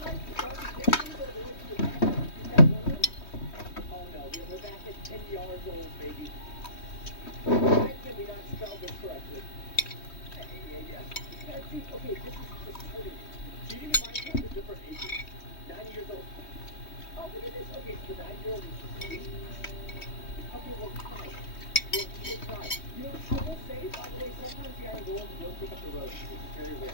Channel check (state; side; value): late; right; 3.2 ms